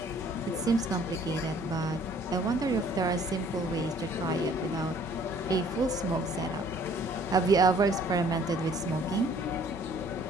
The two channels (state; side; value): normal; both; correlation 0.57